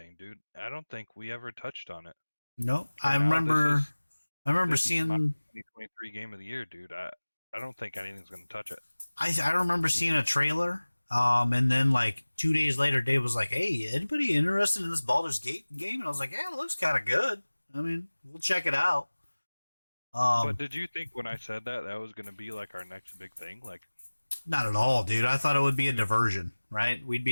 dude. I don't think we ever touched on it. No. I remember seeing 2023 game of the year, dude. I don't think anything's going to touch it. I remember seeing a trailer, and then like 2 days later, Dave was like, "Hey, anybody interested in this Baldur's Gate game?" And I was like, "Yeah, it looks kind of good. I mean, we'll check it out." But did you think when I said that was going to be like our next big thing? Like, not at all, dude. I thought it would be a diversion, right? We'd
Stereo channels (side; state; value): both; inverted; correlation -1.00